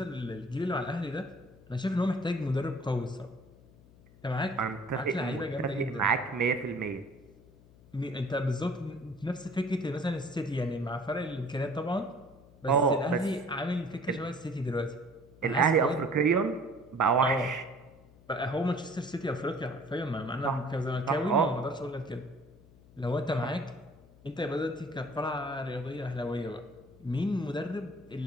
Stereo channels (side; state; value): left; noise; hum, 24 dB below the sound